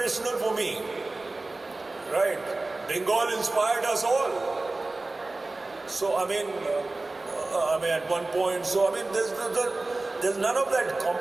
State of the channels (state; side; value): quieter; left; 3.1 dB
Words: for me, right? Bengal inspired us all. So, at one point, there's none of that